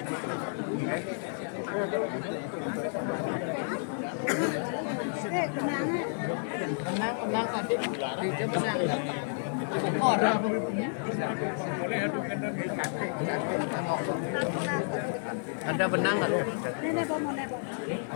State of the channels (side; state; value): right; silent; 57 dB below the other